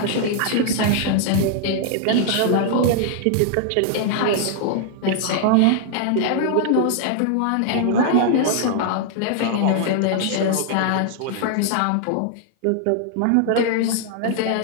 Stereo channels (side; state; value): both; different; correlation 0.00